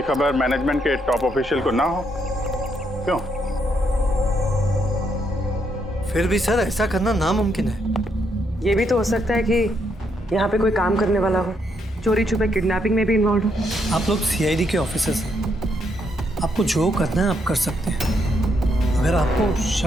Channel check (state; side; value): normal; both; correlation 0.76